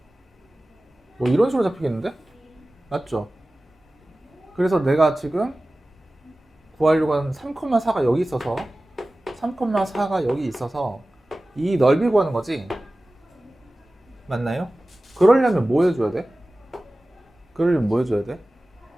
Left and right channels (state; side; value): normal; both; correlation 0.97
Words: 뭐 이런 식으로 잡히겠는데? 맞죠? 그래서 내가 지금 구하려고 하는 3,4가 여기 있어서 3,4가 여기 있어서 이 넓이 구하는 거지? 맞나요? 그러려면 뭐 해줘야 돼?